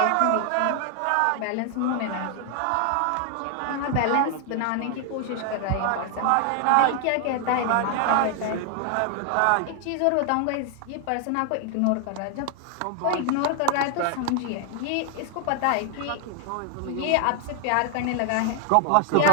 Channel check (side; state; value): both; different; correlation 0.00